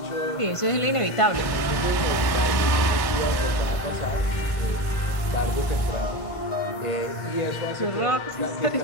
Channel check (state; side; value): late; right; 1.1 ms